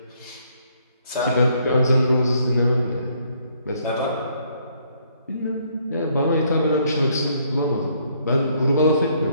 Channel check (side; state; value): both; inverted; correlation -0.68